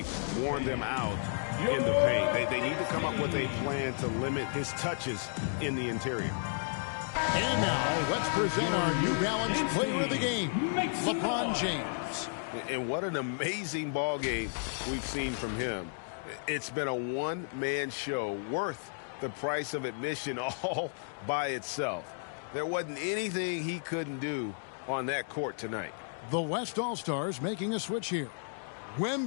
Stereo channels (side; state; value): right; silent; digital silence